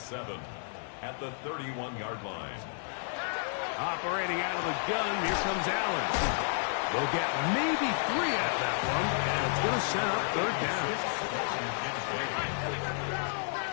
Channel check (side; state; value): right; silent; 56 dB below the other